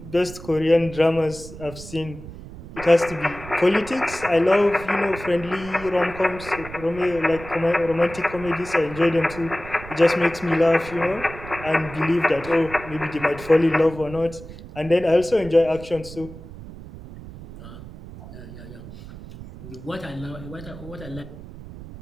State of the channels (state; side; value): noise; right; rumble, 14 dB below the sound